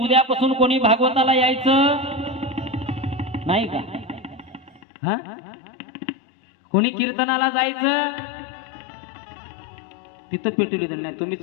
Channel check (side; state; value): right; drops out; at 4.8 s